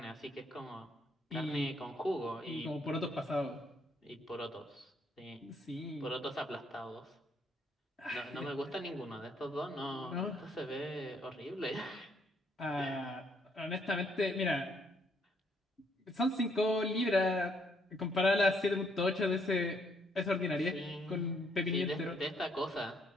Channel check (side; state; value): both; normal; correlation 0.70